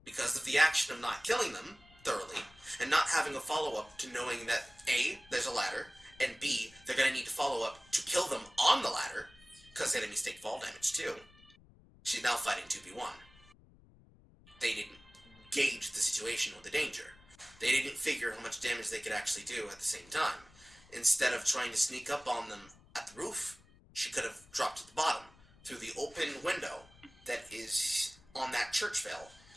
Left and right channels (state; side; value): noise; left; rumble, 26 dB below the sound